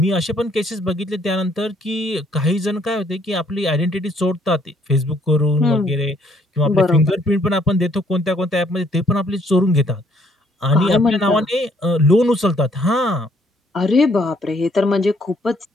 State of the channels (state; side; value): normal; both; correlation 0.65